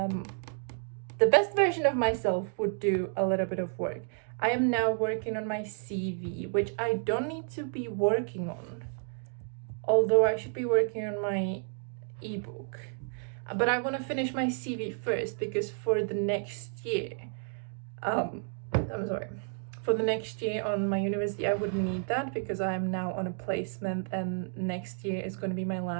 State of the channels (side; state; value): left; silent; 57 dB below the other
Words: best version of myself would do a little bit of work. I am now working on my CV, which I don't need to be working on, although I should be working on my ebook. But I want to finish my CV first because for the next year, for the next year on my university, I wouldn't need that because I am now on a placement and next year is going to be my